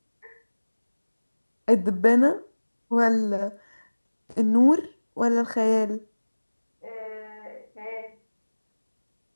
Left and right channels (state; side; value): inverted; both; correlation -1.00